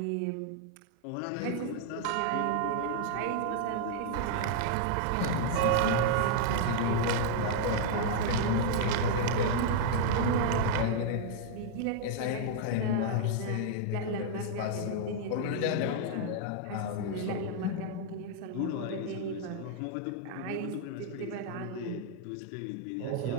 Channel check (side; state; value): both; different; correlation -0.01